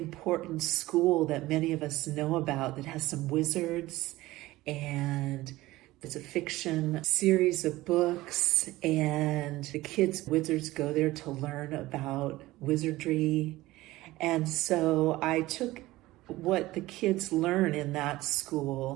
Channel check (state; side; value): quieter; left; 18.0 dB